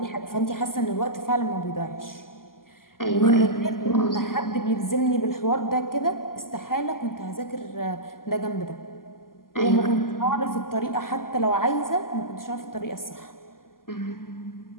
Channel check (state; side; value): late; right; 0.91 ms